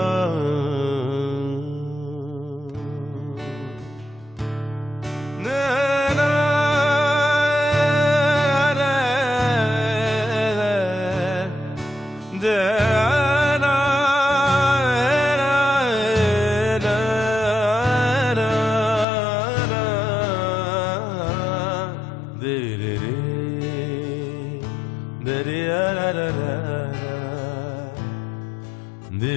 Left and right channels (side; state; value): right; drops out; at 19.1 s